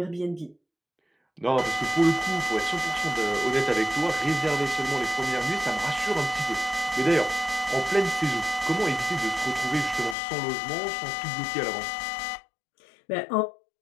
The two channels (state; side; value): drops out; right; at 10.2 s